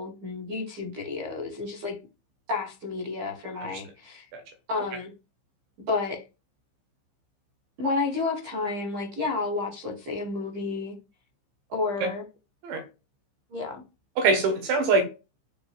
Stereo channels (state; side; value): late; left; 15 ms